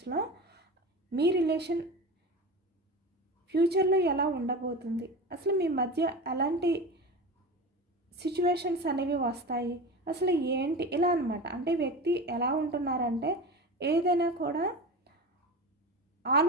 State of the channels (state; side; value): normal; both; correlation 0.29